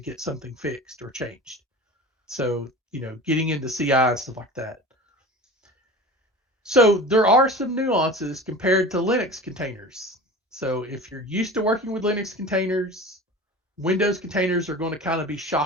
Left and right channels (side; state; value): both; normal; correlation 0.35